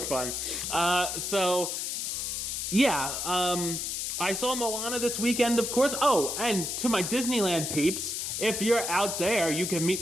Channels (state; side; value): noise; left; hiss, 3 dB below the sound